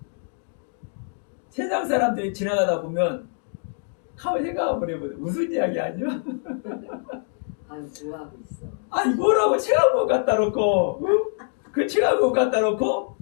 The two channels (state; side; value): silent; right; 62 dB below the other